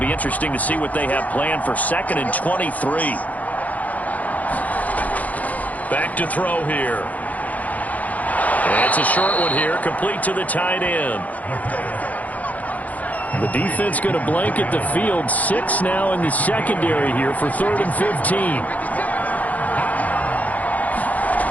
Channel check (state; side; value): late; right; 0.076 ms